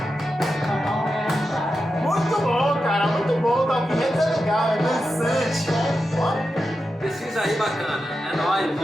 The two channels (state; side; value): normal; both; correlation 0.89